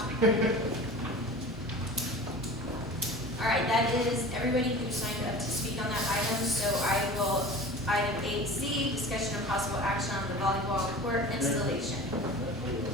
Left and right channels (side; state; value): both; normal; correlation 0.37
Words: All right, that is everybody who signed up to speak on that item. So I will, item 8C, discussion of possible action on the volleyball court installation.